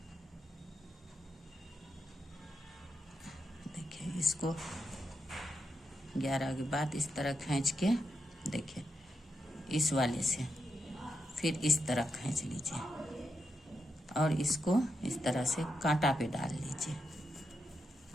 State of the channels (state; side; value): normal; both; correlation 0.85